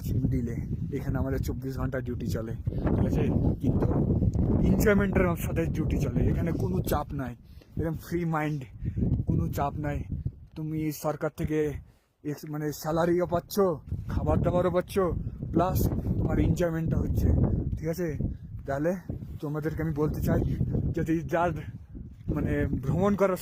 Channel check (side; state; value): both; identical; correlation 1.00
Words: আছি মিডিলে, এখানে আমাদের 24 ঘন্টা ডিউটি চলে, ঠিক আছে? কিন্তু এনজয়মেন্টের সাথে ডিউটি চলে, এখানে কোনো চাপ নাই, এরকম ফ্রি মাইন্ড, কোনো চাপ নাই। তুমি সরকার থেকে মানে স্যালারিও পাচ্ছ, খাবার দাবারও পাচ্ছ, প্লাস তোমার এনজয়মেন্টটা হচ্ছে, ঠিক আছে? তাহলে তোমাদেরকে আমি বলতে চাই, যদি যার মানে ভ্রমণ করার